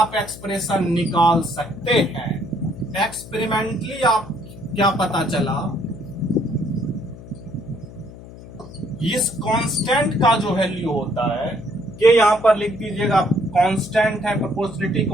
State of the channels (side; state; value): left; noise; hum, 16 dB below the sound